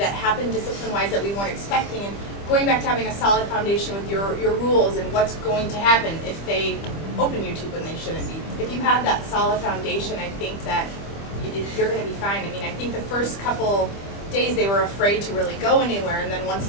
happened discipline-wise that we weren't expecting. And going back to having a solid foundation with your rules and what's going to happen if they open YouTube when they shouldn't be. If you have that solid foundation, I think that you're going to be fine. I mean, I think the first couple days they were afraid to really go anywhere, and then once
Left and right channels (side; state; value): right; late; 25 ms